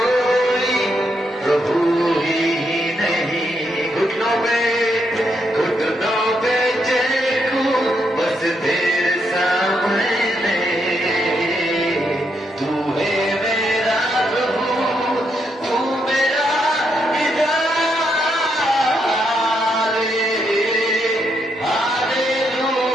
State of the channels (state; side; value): normal; both; correlation 0.79